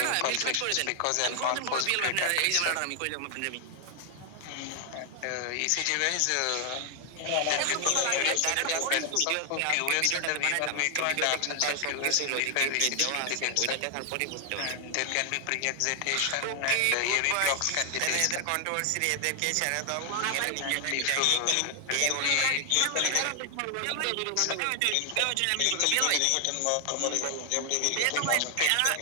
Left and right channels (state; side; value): different; both; correlation 0.00